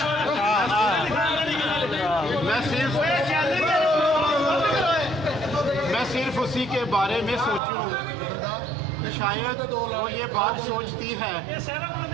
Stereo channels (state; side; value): drops out; left; at 7.6 s